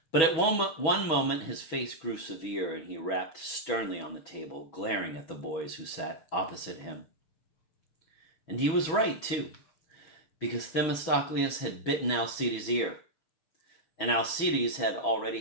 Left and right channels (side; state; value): right; late; 6.2 ms